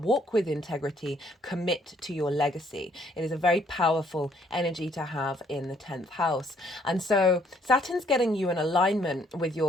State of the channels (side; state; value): both; normal; correlation 0.66